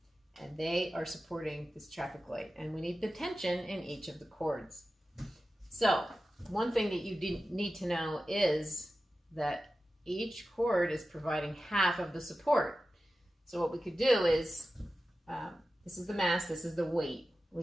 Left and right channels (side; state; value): both; normal; correlation 0.94